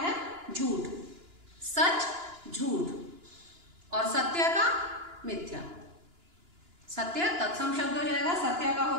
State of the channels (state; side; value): late; left; 2.9 ms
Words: झूठ। सच, झूठ। और सत्य का मिथ्या। सत्य तत्सम शब्द हो जाएगा, सत्य का